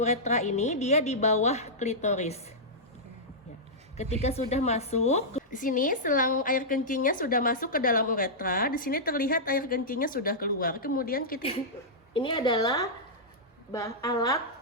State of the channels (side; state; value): both; normal; correlation -0.11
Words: ini dia di bawah klitoris. Ya. Ketika sudah masuk, di sini selang air kencingnya sudah masuk ke dalam uretra. Di sini terlihat air kencingnya sudah keluar. Kemudian kita ini adalah alat